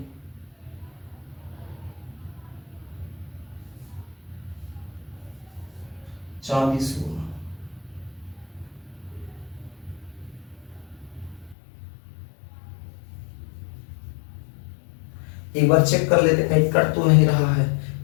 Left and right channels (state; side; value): drops out; right; at 11.6 s